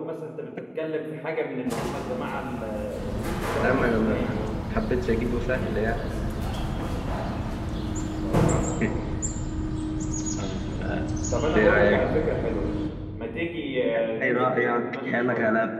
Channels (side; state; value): both; identical; correlation 1.00